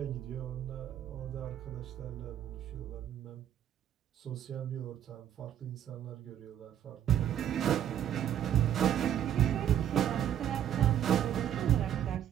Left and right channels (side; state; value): left; quieter; 10.3 dB